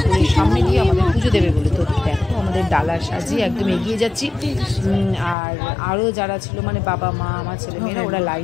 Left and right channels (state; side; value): drops out; right; at 5.4 s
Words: সামনে দিয়ে আমাদের পুজো দেবে বলে। তো দেখো আমাদের ডালা সাজিয়ে একদম এগিয়ে যাচ্ছি। আর আরও যারা ছিল মানে বাবা মা আমার ছেলেমেয়েরা ওরা